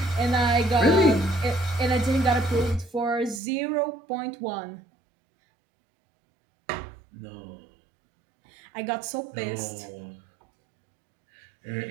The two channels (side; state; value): left; drops out; at 3.4 s